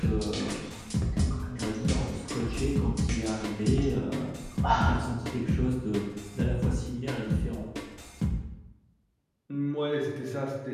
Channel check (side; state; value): both; identical; correlation 1.00